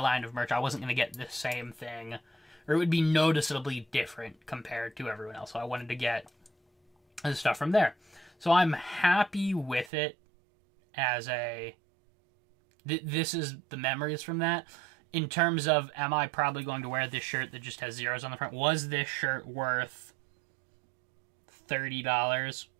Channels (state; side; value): drops out; left; at 9.9 s